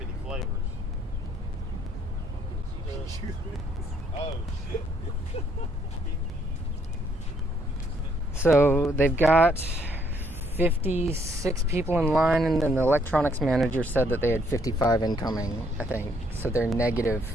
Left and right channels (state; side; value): normal; both; correlation 0.69